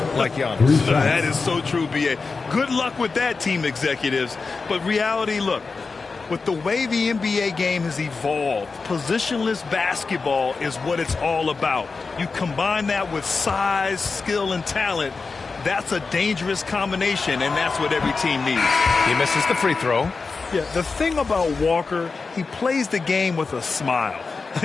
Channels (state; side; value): quieter; right; 4.4 dB